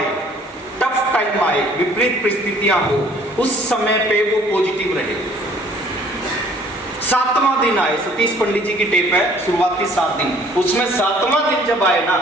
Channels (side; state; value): both; normal; correlation 0.56